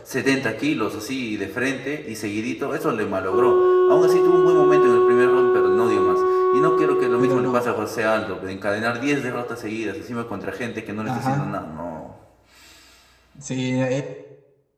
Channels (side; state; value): both; identical; correlation 1.00